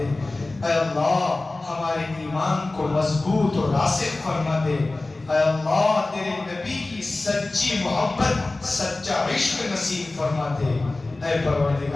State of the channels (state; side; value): quieter; right; 3.1 dB